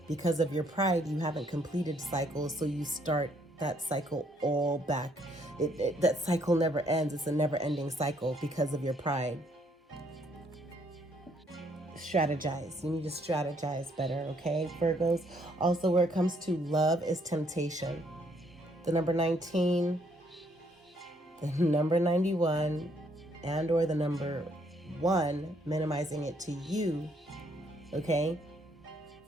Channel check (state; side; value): normal; both; correlation 0.68